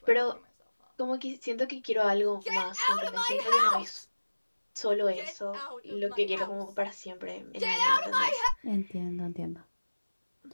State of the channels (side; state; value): both; inverted; correlation -1.00